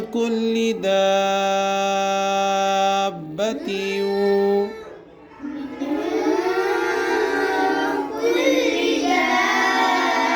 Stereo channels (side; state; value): both; identical; correlation 1.00